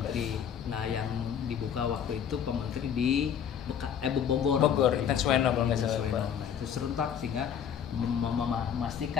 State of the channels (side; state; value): right; quieter; 8.3 dB